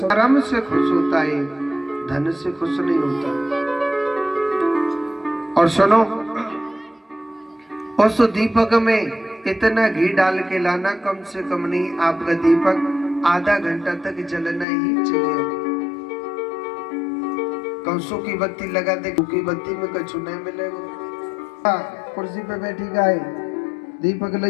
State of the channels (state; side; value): drops out; right; at 14.7 s